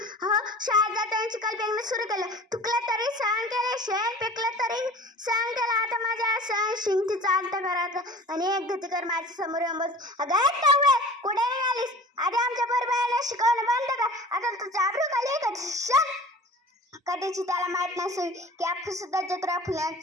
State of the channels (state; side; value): normal; both; correlation 0.41